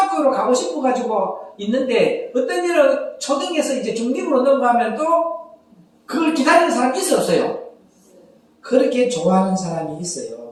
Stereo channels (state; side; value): identical; both; correlation 1.00